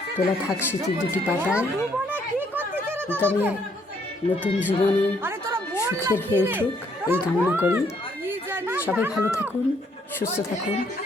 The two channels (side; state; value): both; normal; correlation 0.69